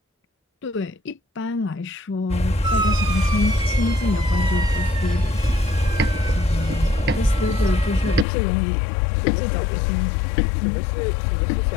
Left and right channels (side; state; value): right; drops out; at 8.2 s